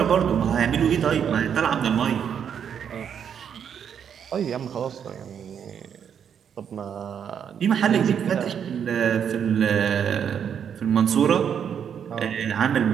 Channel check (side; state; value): left; quieter; 8.1 dB